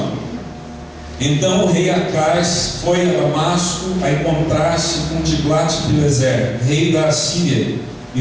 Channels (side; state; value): both; identical; correlation 1.00